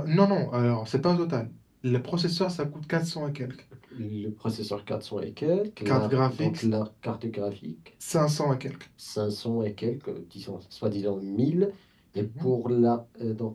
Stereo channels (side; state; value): both; identical; correlation 1.00